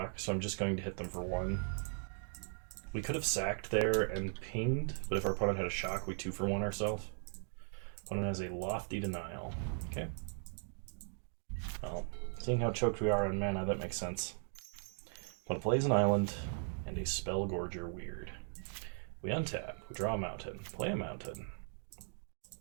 so I'm just going to hit them for 1. We could have sacked there and pinged, but if our opponent had a shock, we 2-for-1 ourselves. Opponent has a Lofty Denial. Okay. Well, seeing how choked we are on mana, that makes sense. Opponent plays an island and a Spellgorger Weird. We untap, we draw a mountain, play a mountain.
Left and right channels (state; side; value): silent; left; 52 dB below the other